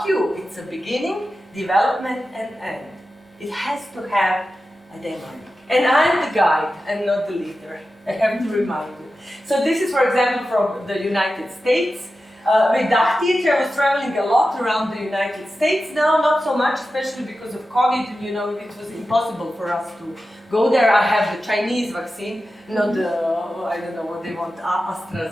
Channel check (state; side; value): normal; both; correlation 0.93